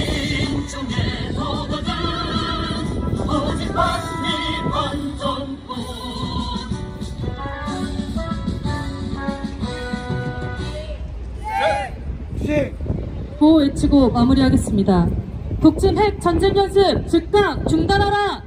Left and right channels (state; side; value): identical; both; correlation 1.00